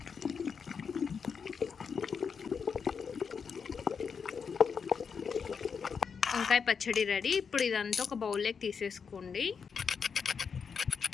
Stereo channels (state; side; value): quieter; right; 6.1 dB